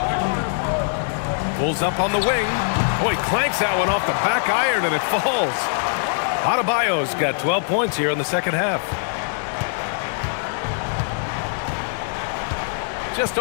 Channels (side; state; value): right; silent; 55 dB below the other